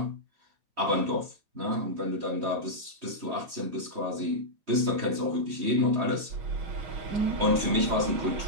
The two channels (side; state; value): left; late; 3.1 ms